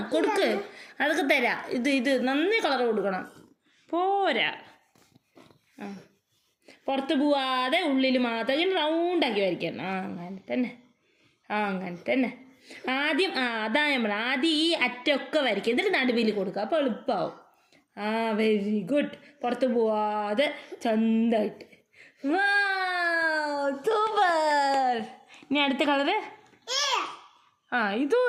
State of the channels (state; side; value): identical; both; correlation 1.00